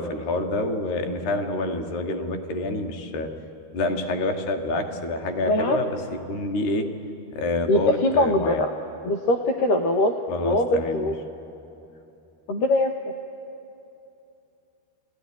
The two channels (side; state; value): right; late; 13 ms